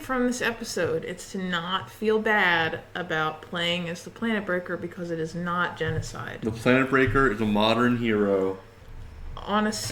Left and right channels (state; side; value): identical; both; correlation 1.00